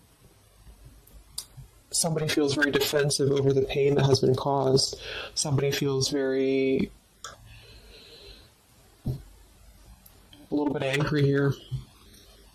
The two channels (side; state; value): both; identical; correlation 1.00